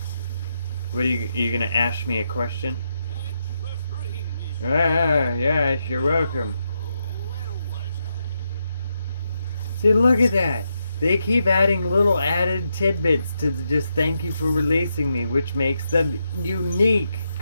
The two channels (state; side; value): inverted; both; correlation -0.83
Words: What are you gonna ask me a question? Ah, yes, you're welcome. See, look at that. They keep adding little added tidbits to just thank you for releasing me, which makes them unique.